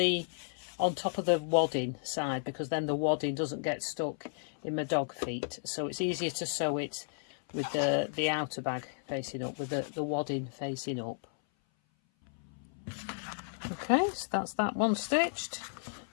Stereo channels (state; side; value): silent; right; 55 dB below the other